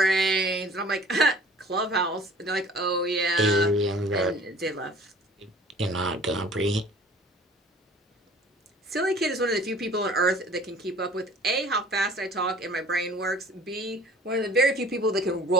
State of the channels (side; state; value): both; normal; correlation 0.49